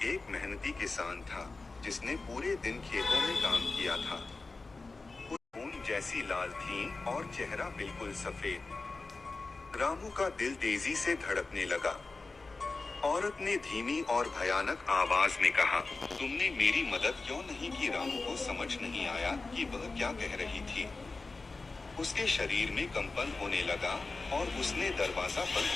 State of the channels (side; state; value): right; quieter; 3.7 dB